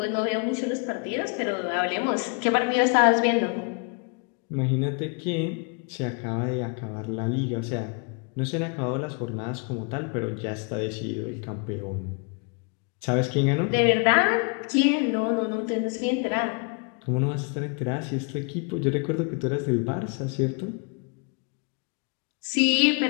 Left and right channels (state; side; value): quieter; right; 36.4 dB